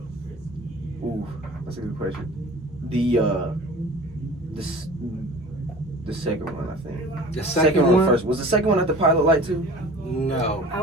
Ooh, that's a good question. The second one, I think. The second one? first. Was the second one at the Pilot Light too? No. I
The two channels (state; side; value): normal; both; correlation 0.42